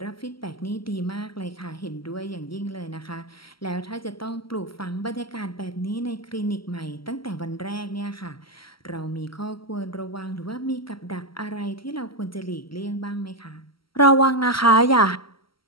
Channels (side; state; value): right; late; 0.75 ms